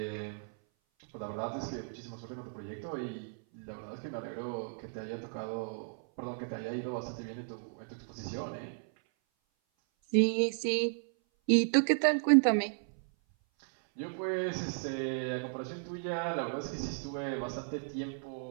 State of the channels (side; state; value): left; silent; 55 dB below the other